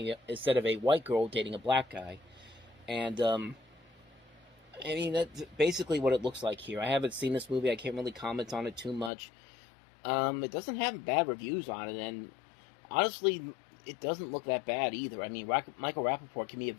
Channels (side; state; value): right; drops out; at 9.1 s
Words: of a white girl dating a black guy. And I mean, that's basically what it looks like here. I haven't seen this movie. I can't really comment on it too much. It doesn't have bad reviews on it, and honestly, it doesn't look that bad either. I mean, Michael Rappaport can be a